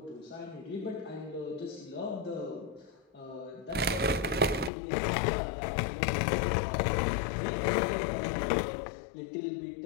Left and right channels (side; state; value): right; drops out; at 4.7 s